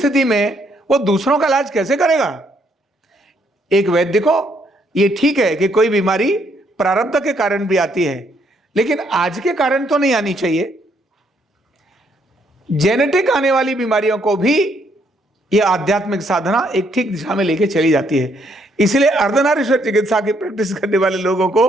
में वो दूसरों का इलाज कैसे करेगा? एक वैद्य को ये ठीक है कि कोई बीमारी प्रारब्ध के कारण भी आती है, लेकिन आज के कारण तो नहीं आनी चाहिए। जेनेटिक आने वाली बीमारियों को भी यह आध्यात्मिक साधना एक ठीक दिशा में लेके चली जाती है। इसलिए अर्धनारीश्वर चिकित्सा की प्रैक्टिस करने वाले लोगों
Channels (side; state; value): both; normal; correlation 0.71